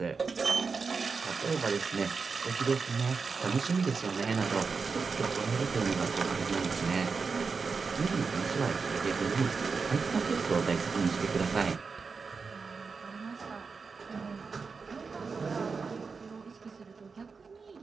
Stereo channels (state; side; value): quieter; left; 4.9 dB